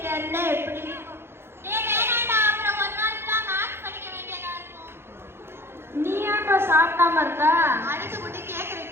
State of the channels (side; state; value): left; late; 0.11 ms